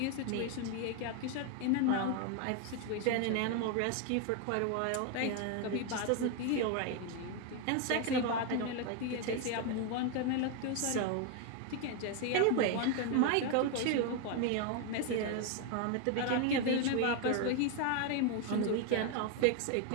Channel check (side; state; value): both; different; correlation 0.01